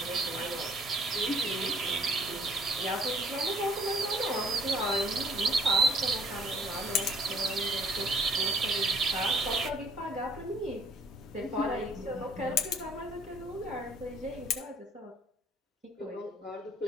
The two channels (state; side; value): normal; both; correlation 0.59